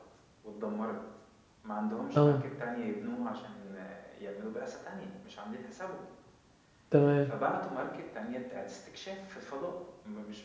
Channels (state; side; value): identical; both; correlation 1.00